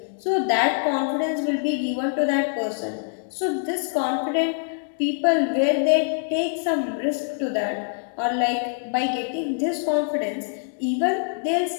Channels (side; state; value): right; silent; digital silence